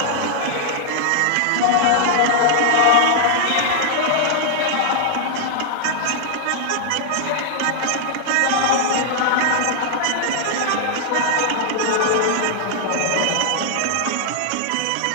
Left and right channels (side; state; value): both; different; correlation 0.00